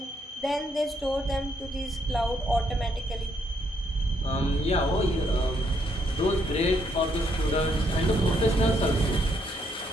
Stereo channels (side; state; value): both; normal; correlation 0.73